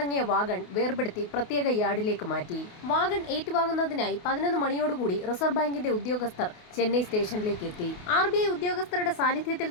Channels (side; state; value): right; late; 28 ms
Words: വാഗൺ വേർപെടുത്തി പ്രത്യേക യാർഡിലേക്ക് മാറ്റി. വാഗൺ ഏറ്റുവാങ്ങുന്നതിനായി 11 മണിയോടുകൂടി റിസർവ് ബാങ്കിന്റെ ഉദ്യോഗസ്ഥർ ചെന്നൈ സ്റ്റേഷനിലേക്ക് എത്തി. RBI ഉദ്യോഗസ്ഥരുടെ സാന്നിധ്യത്തിൽ